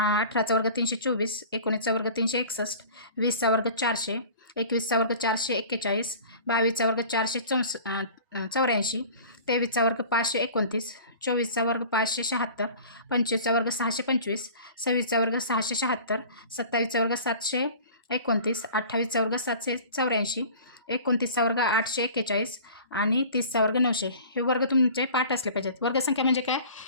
वर्ग 324, 19चा वर्ग 361, 20चा वर्ग 400, 21चा वर्ग 441, 22चा वर्ग 484, 23चा वर्ग 529, 24चा वर्ग 576, 25चा वर्ग 625, 26चा वर्ग 676, 27चा वर्ग 729, 28चा वर्ग 784, 29चा वर्ग 841 आणि 30चा वर्ग 900. हे वर्ग तुमचे पाठ असले पाहिजेत. वर्गसंख्या म्हणजे काय?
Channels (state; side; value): inverted; both; correlation -0.42